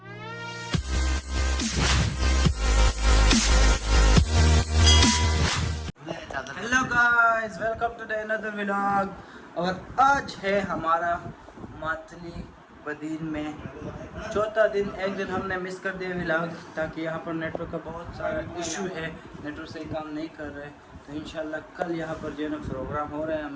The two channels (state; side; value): identical; both; correlation 1.00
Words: Hello guys, welcome to the another vlog. और आज है हमारा मातली बदीन में चौथा दिन। एक दिन हमने मिस कर दिया व्लॉग, ताकि यहाँ पर नेटवर्क का बहुत सारा इशू है, नेटवर्क सही काम नहीं कर रहे। तो इंशाल्लाह कल यहाँ पर जो है ना प्रोग्राम हो रहा है